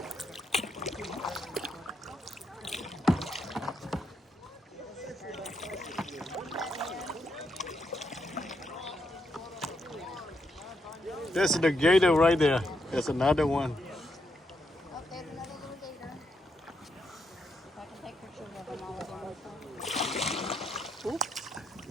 There's the gator right there. There's another one. Oh, there's another little gator. If I can take pictures of them all at once.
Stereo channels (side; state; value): both; normal; correlation 0.80